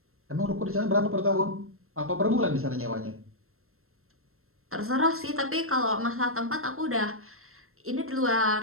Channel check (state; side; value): late; left; 0.62 ms